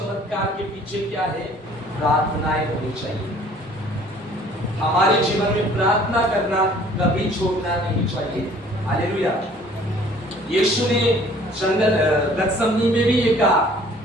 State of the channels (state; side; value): normal; both; correlation 0.54